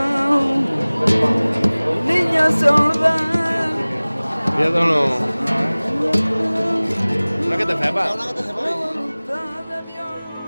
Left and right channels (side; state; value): both; inverted; correlation -1.00